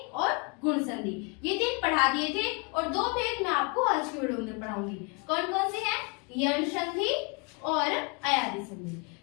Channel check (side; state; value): right; quieter; 32.3 dB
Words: और गुण संधि, ये 3 पढ़ा दिए थे। और 2 भेद मैं आपको आज की वीडियो में पढ़ाऊंगी। कौन कौन से हैं? यण संधि और अयादि संधि।